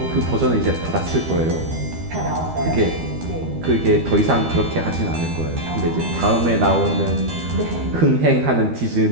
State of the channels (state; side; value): late; left; 12 ms